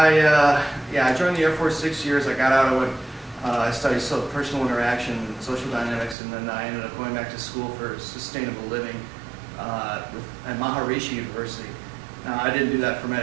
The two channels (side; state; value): left; drops out; at 6.2 s